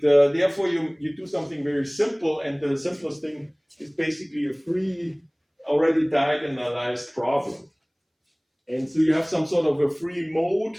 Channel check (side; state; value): both; identical; correlation 1.00